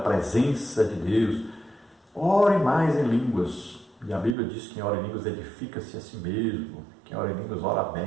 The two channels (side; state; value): left; drops out; at 4.4 s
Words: de Deus, ore mais em línguas. E a Bíblia diz que quem ora em línguas edifica-se a si mesmo, quem ora em línguas ora